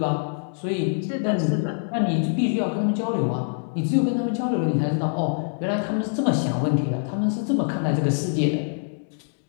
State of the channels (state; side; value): silent; right; digital silence